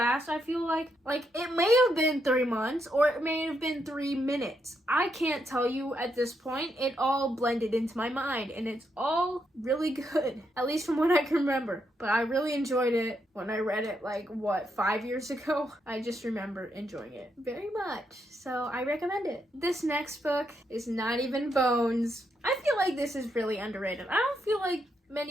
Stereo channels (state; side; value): normal; both; correlation 0.79